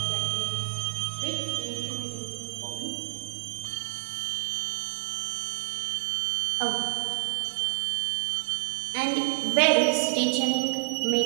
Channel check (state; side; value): silent; left; digital silence